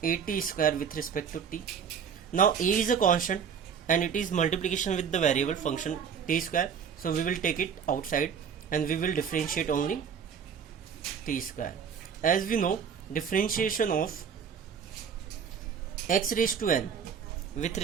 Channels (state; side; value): quieter; left; 7.2 dB